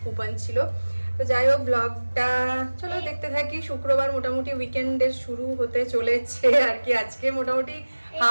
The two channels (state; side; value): inverted; both; correlation -1.00